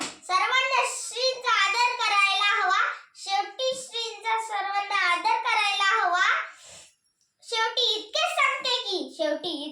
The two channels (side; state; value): both; identical; correlation 1.00